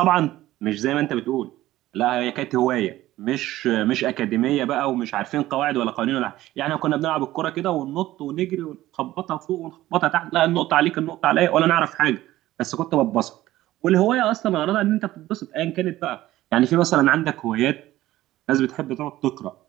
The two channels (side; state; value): left; quieter; 15.5 dB